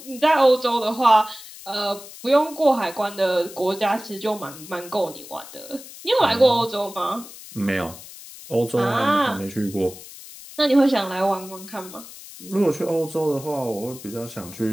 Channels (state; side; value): noise; left; hiss, 16 dB below the sound